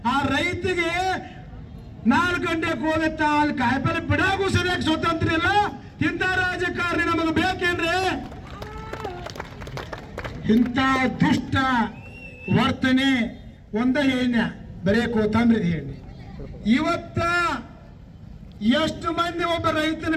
ಆ ರೈತಿಗೆ 4 ಗಂಟೆಗೆ ಹೋಗುತ್ತ ಅಲ್ಲಿ ಕಾಯಿಪಲ್ಲೆ ಬಿಡಾಗೂ ಸರಿಯಾಗಿ ಸ್ವತಂತ್ರ ಇಲ್ಲ. ಇಂಥ ರಾಜಕಾರಣಿ ನಮಗೆ ಬೇಕೇನ್ರಿ? ಇಂಥ ದುಷ್ಟ ವರ್ತನೆ ಒಂದ ಹೇಳ ಬರೇ ಕೊತ್ತಂಬರಿ ಹೇಳಿ. ಇವತ್ತ ಎಷ್ಟು ಮಂದಿ ಒಬ್ಬ ರೈತನ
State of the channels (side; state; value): both; identical; correlation 1.00